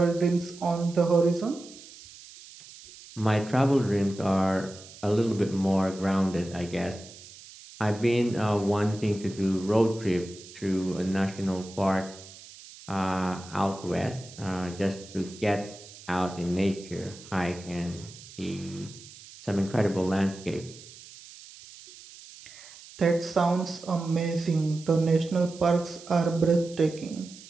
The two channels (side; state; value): right; noise; hiss, 18 dB below the sound